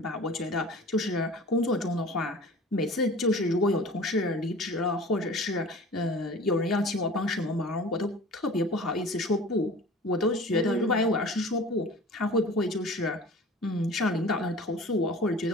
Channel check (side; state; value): both; normal; correlation 0.41